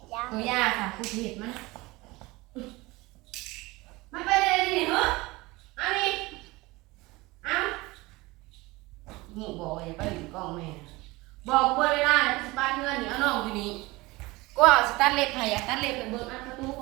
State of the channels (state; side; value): quieter; left; 21.9 dB